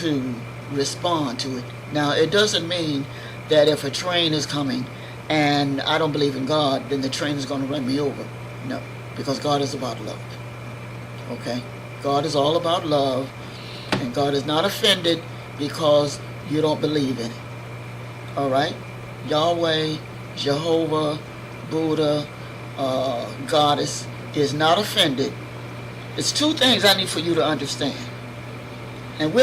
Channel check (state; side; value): identical; both; correlation 1.00